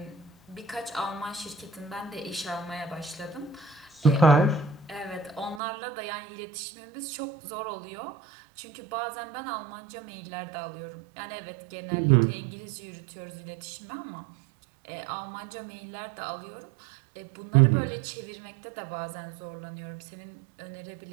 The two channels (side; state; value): left; drops out; at 5.6 s